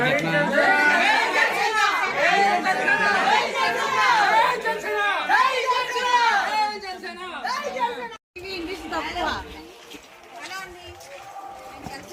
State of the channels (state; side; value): identical; both; correlation 1.00